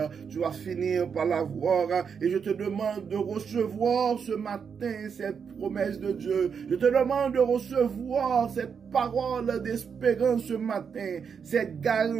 tu vas finir par l'avoir, et je te demande de recevoir ce matin cette promesses de Dieu. Je te demande de recevoir cette parole d'espérance ce matin, cette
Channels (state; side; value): quieter; left; 6.6 dB